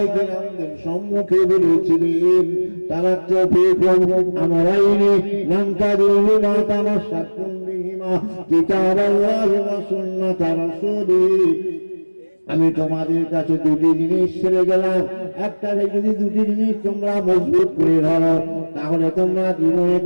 কেরামদের সম্মুখে বলেছিলেন তারাক্তু ফীকুম আমরাইনি লান তাদিল্লু মা তামাসসাকতুম বিহিমা কিতাবাল্লাহি ওয়া সুন্নাতা রাসূলিহি। আমি তোমাদের কাছে দুটি জিনিস ছেড়ে গেলাম, একটা যদি দুটি জিনিস তোমরা মজবুত করে ধরো তাহলে তোমরা জীবনে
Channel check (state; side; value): inverted; both; correlation -1.00